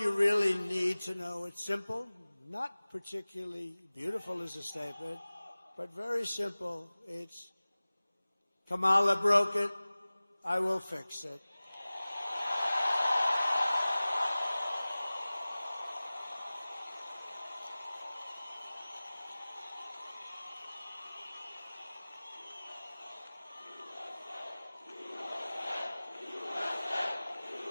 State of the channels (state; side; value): inverted; both; correlation -0.99